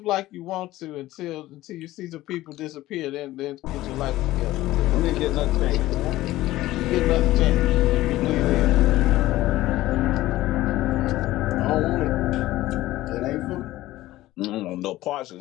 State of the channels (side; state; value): right; quieter; 16.3 dB